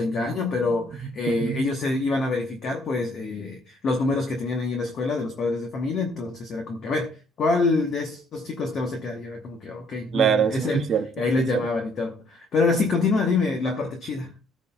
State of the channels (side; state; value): both; normal; correlation 0.65